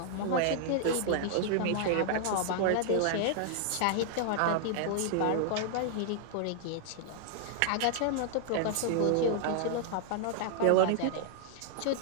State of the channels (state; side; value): different; both; correlation -0.01